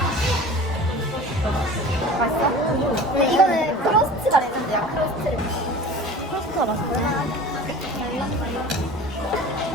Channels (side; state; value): both; normal; correlation 0.39